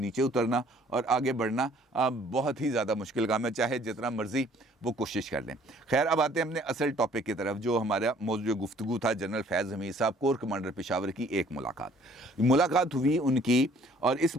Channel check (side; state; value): both; normal; correlation 0.58